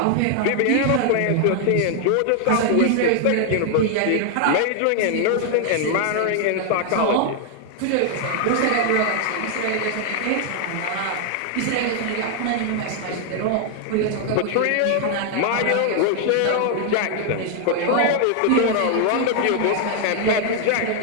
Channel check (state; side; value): different; both; correlation 0.00